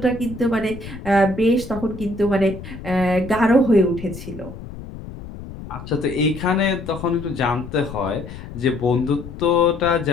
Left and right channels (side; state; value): left; noise; rumble, 12 dB below the sound